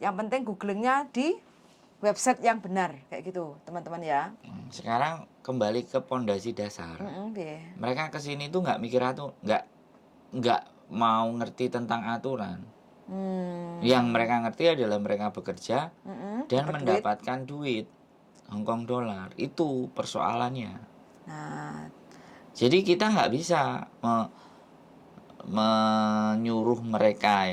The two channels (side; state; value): both; identical; correlation 1.00